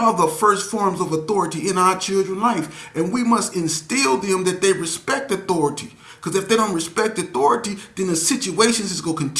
the first forms of authority in our children's life. And we must instill them that they respect authority. Because if they don't respect authority, then the situations is going to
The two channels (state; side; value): identical; both; correlation 1.00